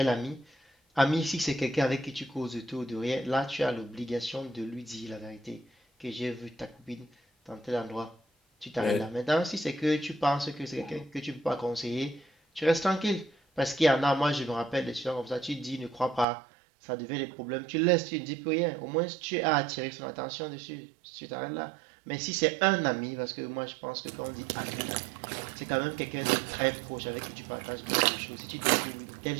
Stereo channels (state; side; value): drops out; left; at 16.2 s